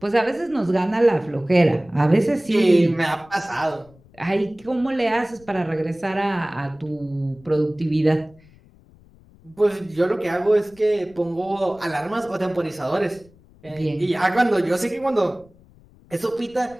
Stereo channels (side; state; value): left; noise; rumble, 27 dB below the sound